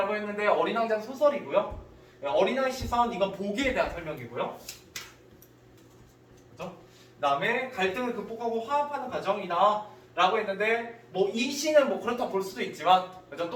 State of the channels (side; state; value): both; identical; correlation 1.00